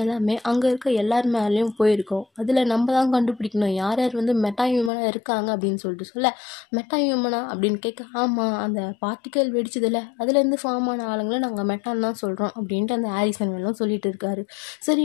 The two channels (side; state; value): right; drops out; at 4.9 s